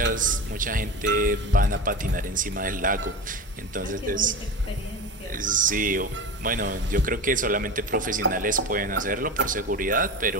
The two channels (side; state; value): both; normal; correlation 0.27